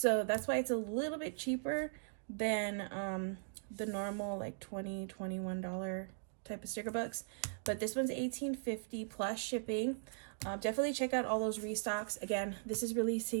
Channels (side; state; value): left; silent; digital silence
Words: that's why it's a little bit cheaper than the normal like $20, $21 type of sticker books. But this one's $18.50 plus shipping. Definitely check out all those restocks. Again, this is